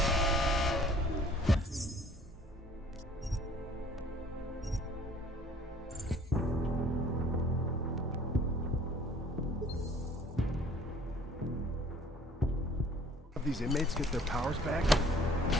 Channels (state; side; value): normal; both; correlation 0.54